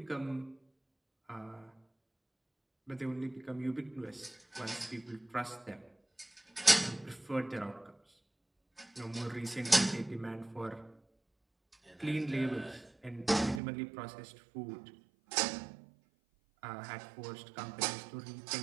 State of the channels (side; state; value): left; drops out; at 13.6 s